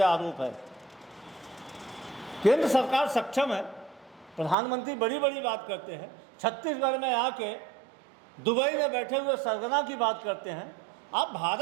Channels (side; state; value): left; drops out; at 4.5 s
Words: आरोप है। केंद्र सरकार सक्षम है। प्रधानमंत्री बड़ी बड़ी बात करते हैं, छत्तीसगढ़ में आके दुबई में बैठे हुए सरगना की बात करते हैं। आप